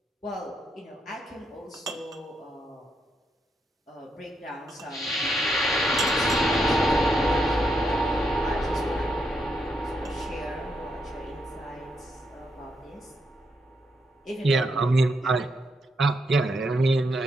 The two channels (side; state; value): both; normal; correlation 0.80